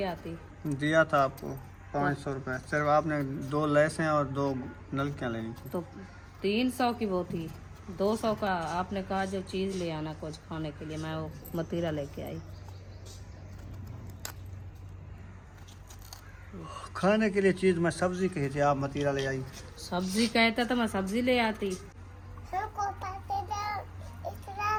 आती। दिया था आपको 500 रुपये, सिर्फ आपने 2 लैसें और 2 नलकियाँ लेनी थी। तो 300 की वो थी, 200 का आपने कहा जो चीज़ ले आना कुछ खाने के लिए, मैं वो मतीरा लेके आई। खाने के लिए चीज़ मैं सब्जी कही थी, आप मतीरा ले आई। सब्जी कहते तो मैं सब्जी ले आती।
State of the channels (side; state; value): both; identical; correlation 1.00